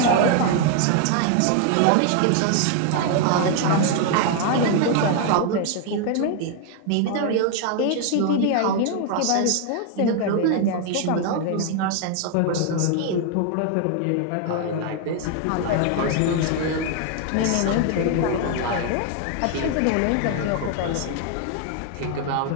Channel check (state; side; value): different; both; correlation 0.00